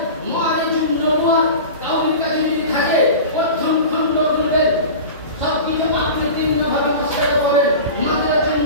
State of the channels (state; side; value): inverted; both; correlation -0.33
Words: মুআরিজুন নবুওয়াত কাউরির কাছে যদি থাকে প্রথম খণ্ড খুলবেন, সবকিছু আপনি তিনভাবে মশলা করেন। মাদ্রাসুন